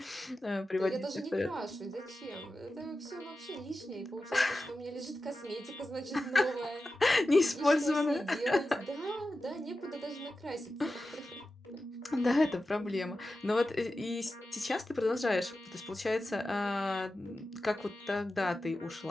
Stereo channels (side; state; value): both; normal; correlation 0.93